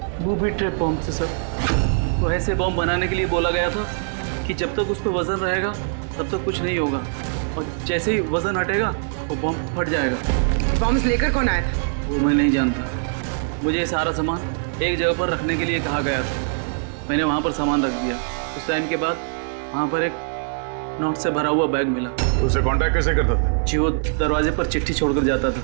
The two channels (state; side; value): silent; left; digital silence